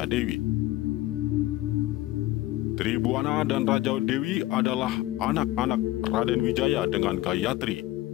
Dewi. Tribuana dan Raja Dewi adalah anak-anak Raden Wijaya dengan Gayatri.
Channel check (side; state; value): right; quieter; 16.8 dB